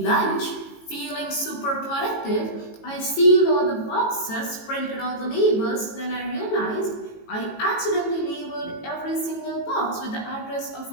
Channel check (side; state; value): right; late; 18 ms